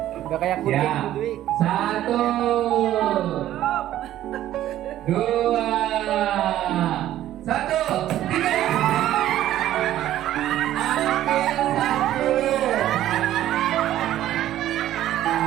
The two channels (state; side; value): quieter; left; 13.0 dB